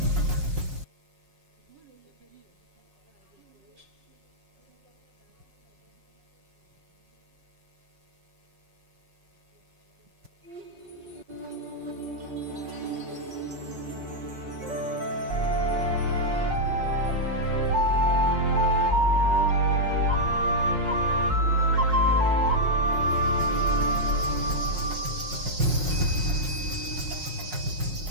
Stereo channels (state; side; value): late; left; 5.5 ms